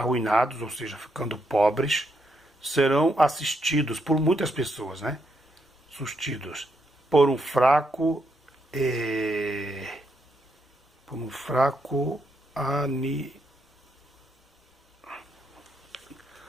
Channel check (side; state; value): both; normal; correlation 0.78